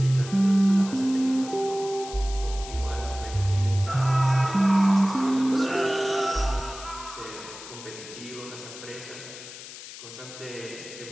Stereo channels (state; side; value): noise; left; hiss, 14 dB below the sound